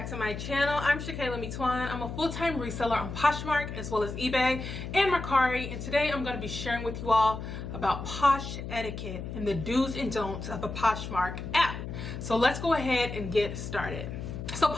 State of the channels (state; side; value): noise; left; hum, 7 dB below the sound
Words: to my channel. I'm Shakayla. I'm a full-time reseller on Poshmark as well as eBay and Mercari, and today I'm going to be sharing with you all about Posh etiquette and the do's and don'ts of a Poshmark app. So let's go ahead and get started. So